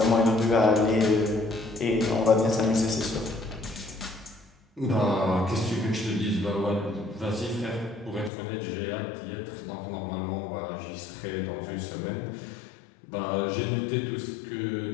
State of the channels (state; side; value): drops out; right; at 8.3 s